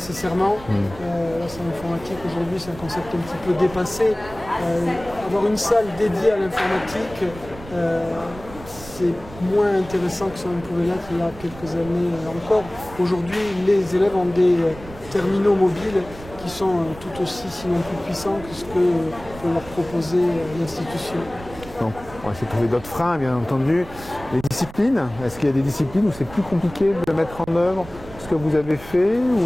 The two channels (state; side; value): noise; right; rumble, 16 dB below the sound